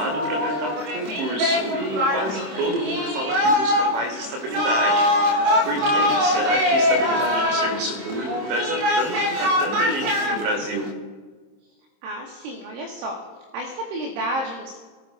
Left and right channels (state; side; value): late; left; 26 ms